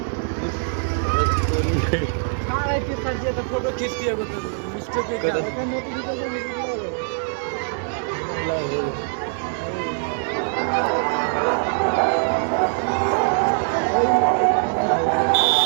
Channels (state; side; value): silent; left; 63 dB below the other